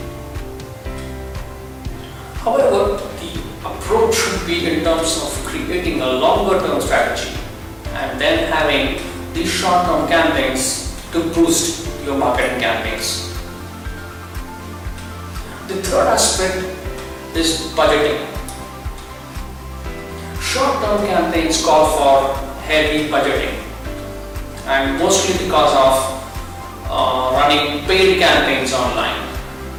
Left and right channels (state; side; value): identical; both; correlation 1.00